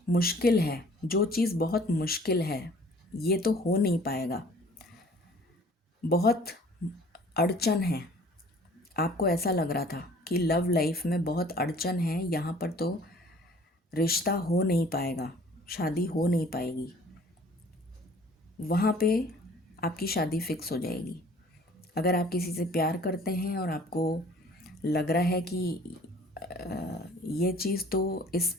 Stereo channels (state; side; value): normal; both; correlation 0.52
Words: मुश्किल है, जो चीज़ बहुत मुश्किल है ये तो हो नहीं पाएगा, बहुत अड़चन है, आपको ऐसा लग रहा था कि लव लाइफ में बहुत अड़चन है, यहाँ पर तो रिश्ता हो नहीं पाएगा, शादी हो नहीं पाएगी, वहाँ पे आपकी शादी फिक्स हो जाएगी। अगर आप किसी से प्यार करते हैं और आपको लग रहा है कि ये चीज़ तो इस